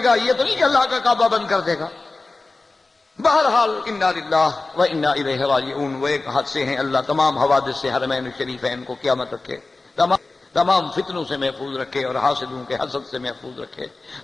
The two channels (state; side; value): quieter; right; 3.4 dB